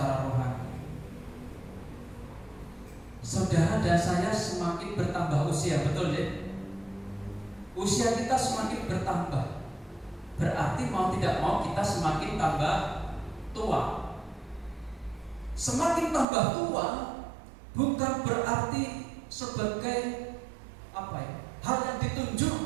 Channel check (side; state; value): left; drops out; at 16.2 s